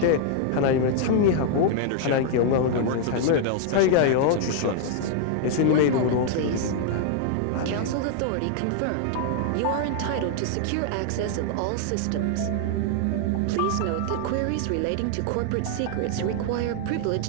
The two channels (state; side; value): different; both; correlation 0.00